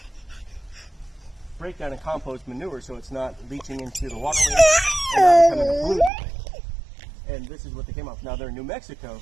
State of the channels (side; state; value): left; drops out; at 6.1 s